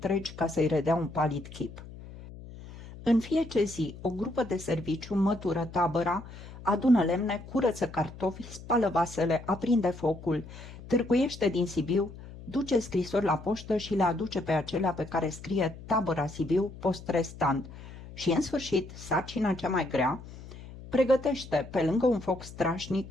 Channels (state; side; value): noise; left; hum, 15 dB below the sound